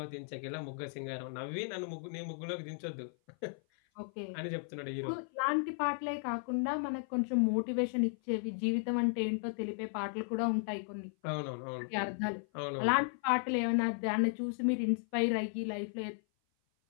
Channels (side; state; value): right; silent; 54 dB below the other